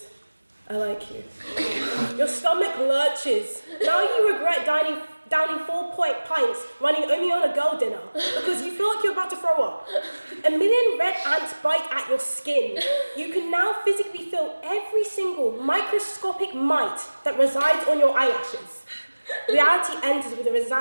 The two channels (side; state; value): both; inverted; correlation -1.00